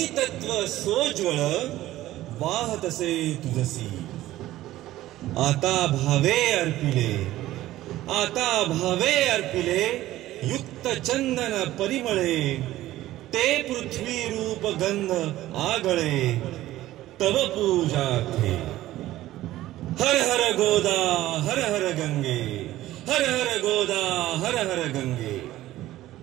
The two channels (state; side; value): quieter; left; 15.2 dB